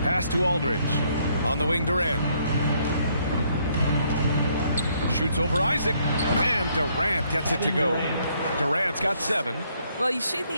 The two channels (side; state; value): both; inverted; correlation -0.69